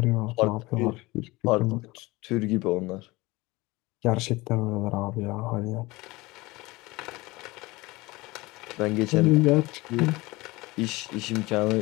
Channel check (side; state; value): right; quieter; 21.8 dB